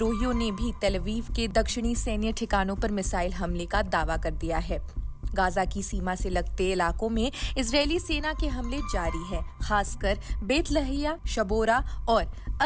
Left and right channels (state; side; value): identical; both; correlation 1.00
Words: ने भी तेल अवीव के दक्षिणी सैन्य ठिकानों पर मिसाइल हमले का दावा कर दिया है। गाजा की सीमा से लगते इलाकों में इजरायली सेना के हमले जारी है। खासकर बेत लहैया, शबोरा और